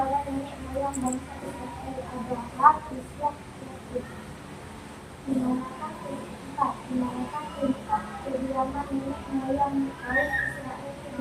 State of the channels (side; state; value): both; identical; correlation 1.00